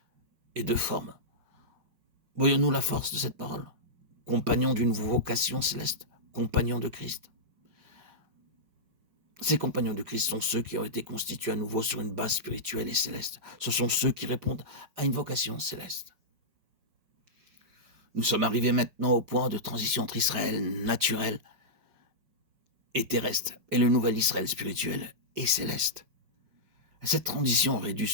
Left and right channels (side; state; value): left; late; 5.5 ms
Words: et de formes. Voyons-nous la force de cette parole? Compagnons d'une vocation céleste, compagnons de Christ. Ces compagnons de Christ sont ceux qui ont été constitués à nouveau sur une base spirituelle et céleste. Ce sont ceux qui répondent à une vocation céleste. Nous sommes arrivés maintenant au point de transition entre Israël naturel et terrestre et le nouvel Israël spirituel et céleste. Cette transition aurait dû